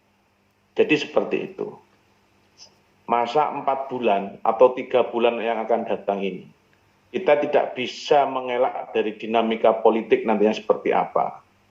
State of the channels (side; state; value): both; identical; correlation 1.00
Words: Jadi seperti itu. Masa 4 bulan atau 3 bulan yang akan datang ini, kita tidak bisa mengelak dari dinamika politik nantinya seperti apa.